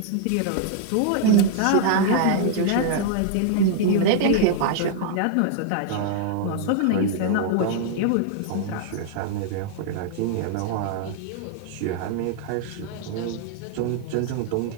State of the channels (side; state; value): both; different; correlation -0.01